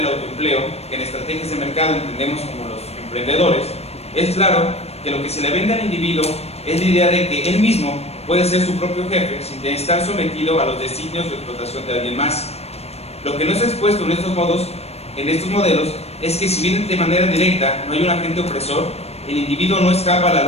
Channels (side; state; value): right; late; 0.30 ms